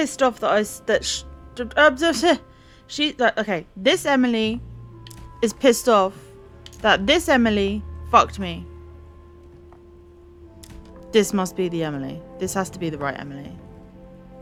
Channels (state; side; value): identical; both; correlation 1.00